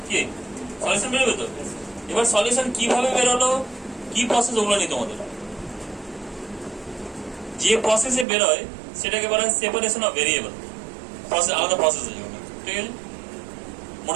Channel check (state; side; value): drops out; left; at 8.2 s